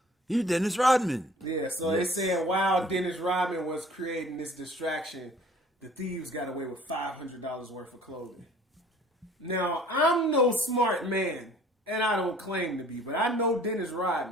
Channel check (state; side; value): normal; both; correlation 0.52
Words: You Dennis Rodman. Yeah, so they saying while Dennis Rodman was creating this distraction, the thieves got away with $500 worth of clothing. Now, I'm no smart man, and I don't claim to be, but I know Dennis